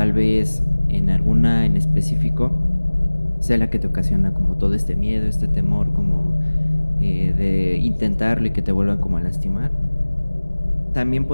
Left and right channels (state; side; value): inverted; both; correlation -1.00